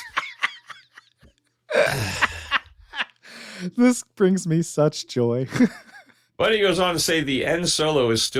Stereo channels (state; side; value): identical; both; correlation 1.00